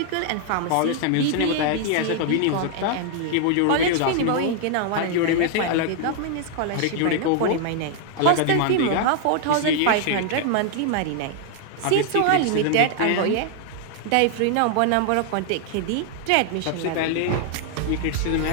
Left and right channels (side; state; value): both; different; correlation 0.00